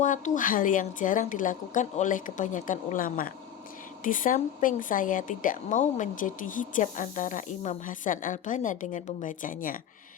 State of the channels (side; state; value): right; quieter; 10.0 dB